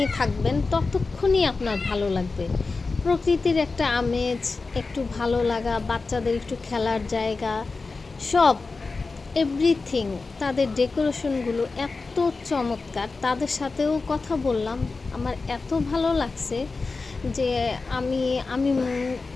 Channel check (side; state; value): right; quieter; 4.0 dB